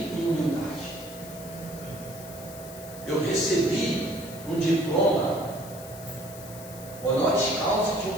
em humildade. Eu recebi um diploma honoris causa de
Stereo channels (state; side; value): noise; left; hiss, 16 dB below the sound